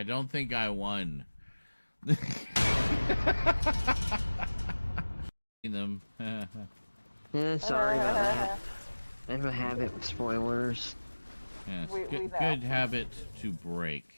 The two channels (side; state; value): both; inverted; correlation -1.00